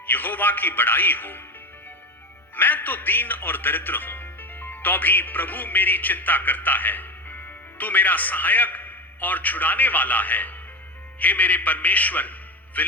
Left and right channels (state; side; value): normal; both; correlation 0.21